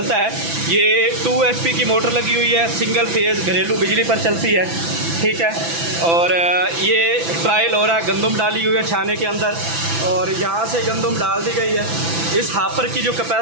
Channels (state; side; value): late; left; 6.0 ms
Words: है। ये 2 HP की मोटर लगी हुई है, सिंगल फेज़ घरेलू बिजली पर चलती है, ठीक है। और ये ट्रायल हो रहा है, गंदम डाली हुई है छाने के अंदर और यहाँ से गंदम डाल दी गई है। इस हापर की जो